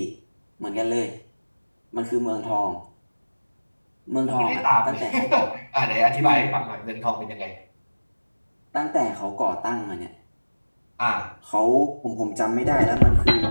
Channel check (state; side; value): inverted; both; correlation -1.00